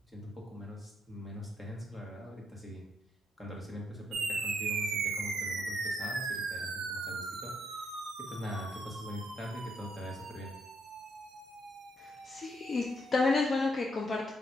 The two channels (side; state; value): both; normal; correlation 0.74